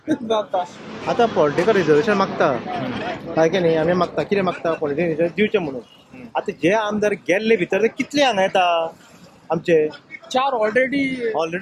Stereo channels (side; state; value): both; identical; correlation 1.00